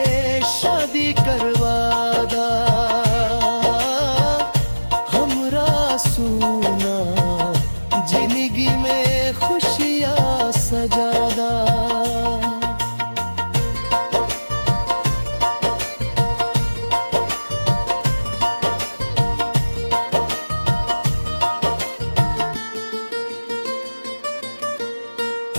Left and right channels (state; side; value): inverted; both; correlation -1.00